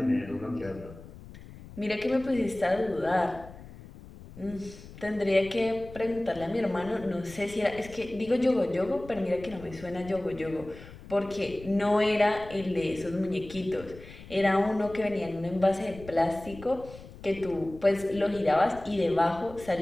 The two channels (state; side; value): noise; left; rumble, 17 dB below the sound